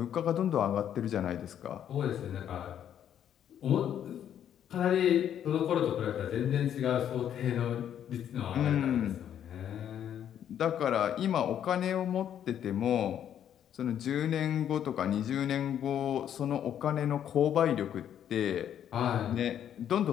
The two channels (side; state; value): right; quieter; 9.8 dB